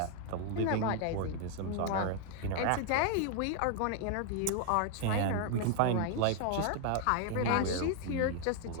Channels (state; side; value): different; both; correlation 0.00